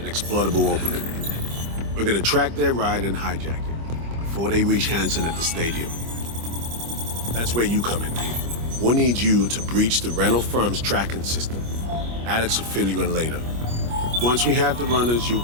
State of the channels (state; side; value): late; left; 25 ms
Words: exploitable opening. We're gonna track their ride and hijack it before they reach Hansen at the stadium. That's where you come in, Pete. We'll need you to breach the rental firm's tracking system. Alex will fill you in later. Once we have the runners, you'll